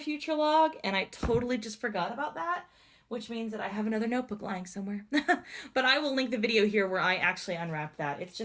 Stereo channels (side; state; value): both; identical; correlation 1.00